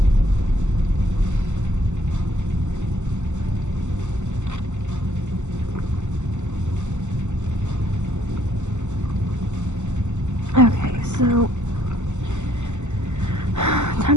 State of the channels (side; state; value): left; late; 0.84 ms